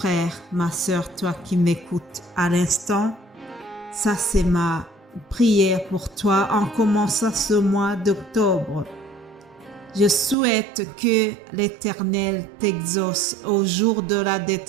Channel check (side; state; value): left; drops out; at 10.4 s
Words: ma sœur, toi qui m'écoutes à l'instant, ça c'est ma prière pour toi en commençant ce mois d'octobre. Je souhaite que l'Éternel t'exauce au jour de la